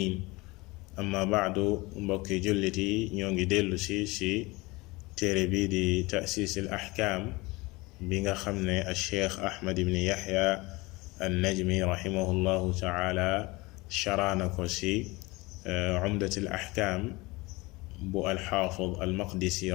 أما بعد mbokki jullit yi ñoo ngi dellu si téere bi di ta'siis al ahkaam bi nga xam ne al cheikh Ahmad ibn Yahya an Najmi rahimahullahu taala sharaana ko si umdat al ahkaam bu alxaafid almaqdisi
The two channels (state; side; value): quieter; right; 23.1 dB